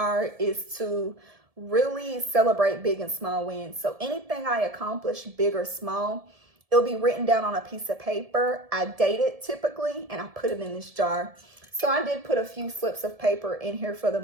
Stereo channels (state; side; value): late; left; 1.7 ms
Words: is to really celebrate big and small wins. So anything I accomplish, big or small, it'll be written down on a piece of paper. I date it typically, and I put it in this jar. So I did put a few slips of paper in here for the